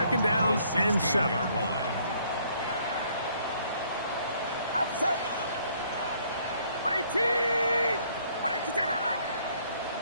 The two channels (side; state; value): both; inverted; correlation -0.64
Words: down and 7. Outside. 18. 22.